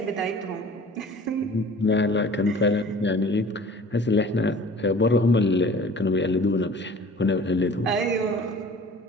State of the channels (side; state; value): both; normal; correlation 0.46